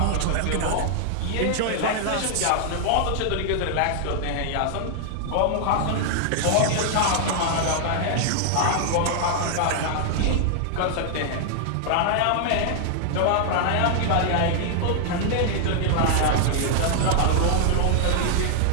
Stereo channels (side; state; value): both; different; correlation 0.00